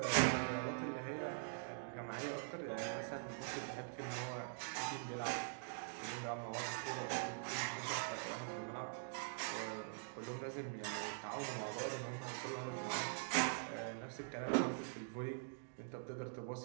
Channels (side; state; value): left; silent; digital silence